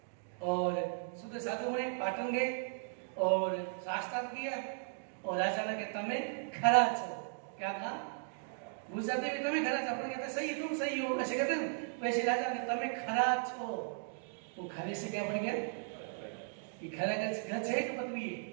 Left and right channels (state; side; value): silent; left; digital silence